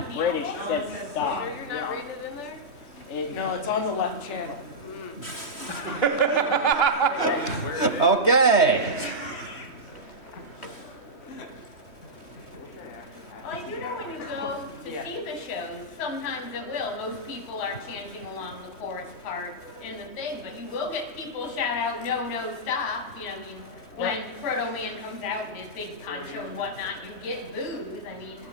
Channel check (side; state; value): right; late; 3.1 ms